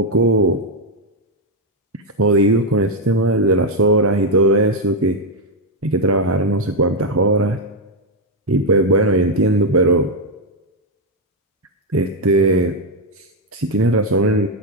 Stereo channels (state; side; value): normal; both; correlation 0.02